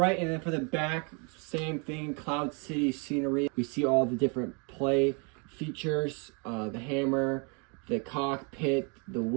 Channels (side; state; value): left; quieter; 34.7 dB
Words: and then for the back, same thing, Cloud City scenery. We see all the different play features, the hammer, the cockpit, the